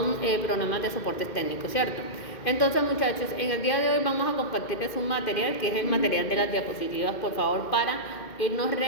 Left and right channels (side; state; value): right; late; 2.1 ms